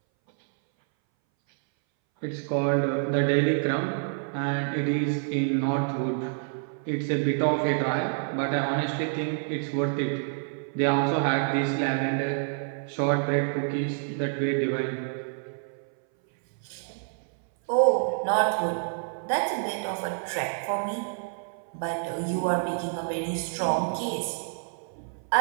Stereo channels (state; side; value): silent; left; 60 dB below the other